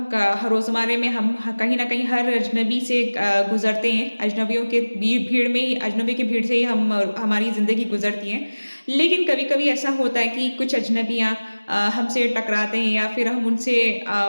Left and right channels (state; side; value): inverted; both; correlation -1.00